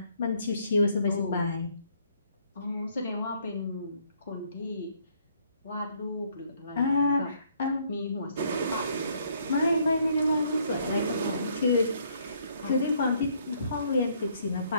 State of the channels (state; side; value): inverted; both; correlation -0.67